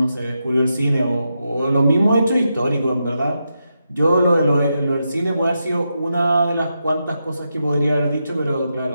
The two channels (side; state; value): both; inverted; correlation -0.86